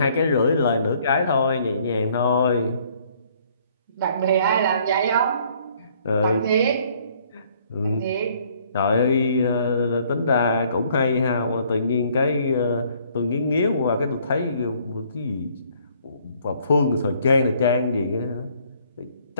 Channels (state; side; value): inverted; both; correlation -0.62